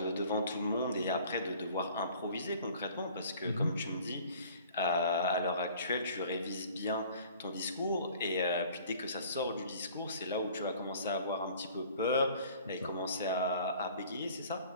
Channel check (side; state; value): both; inverted; correlation -0.50